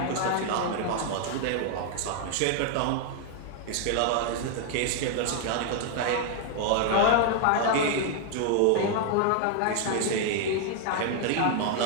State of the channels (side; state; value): both; different; correlation 0.00